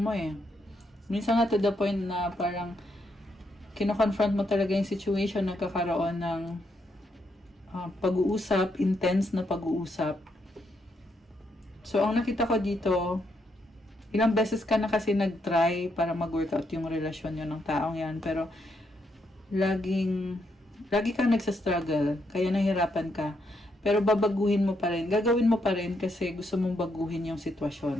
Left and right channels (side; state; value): both; normal; correlation 0.78